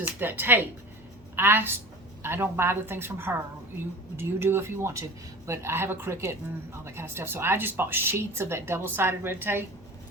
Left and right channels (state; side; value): noise; left; hum, 24 dB below the sound